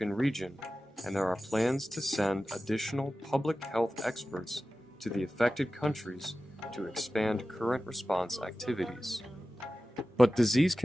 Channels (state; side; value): normal; both; correlation 0.95